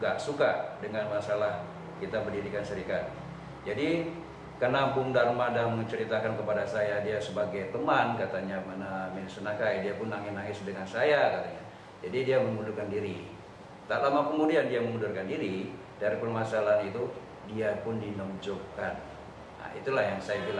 nggak suka dengan masalah kita berdirikan serikat. Jadi karena Bung Dharma dan menceritakan kepada saya, dia sebagai teman katanya Minister Nakai, dia pun nangis-nangis dengan saya katanya. Jadi dia mengundurkan diri. Tak lama kemudian dia mengundurkan diri dari permasalahan itu, dia pun dinonjolkan. Nah, itulah yang saya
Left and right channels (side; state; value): both; identical; correlation 1.00